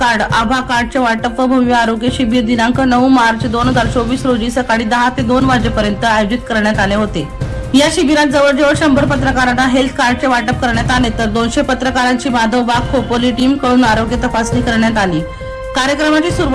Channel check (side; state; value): both; identical; correlation 1.00